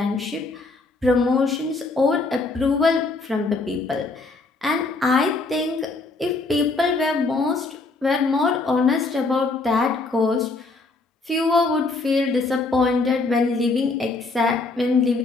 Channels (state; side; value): quieter; right; 3.6 dB